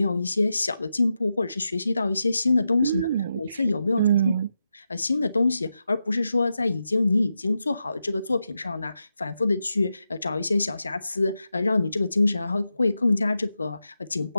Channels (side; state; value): both; inverted; correlation -0.88